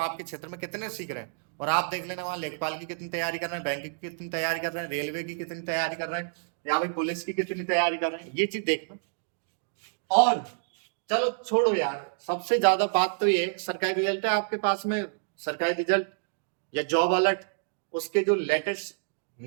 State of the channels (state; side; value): silent; left; digital silence